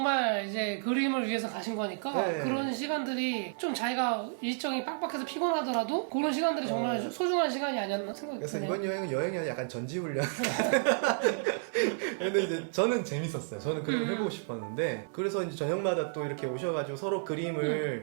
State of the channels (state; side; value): silent; left; 57 dB below the other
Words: 이제 그림을 위해서 가신 거니까 네. 그런 시간들이 좀 자기가 일정이 빡빡해서 피곤하더라도 그런 시간들이 정말 소중한 시간이 아니었나 생각이 그래서 드네요. 이번 여행이 아니라 약간 전지훈련 근데 이제 저는 재밌었어요. 저는 그림을 해보고 싶었는데 그래서 이제 저녁마다 또 이렇게 오셔가지고 서로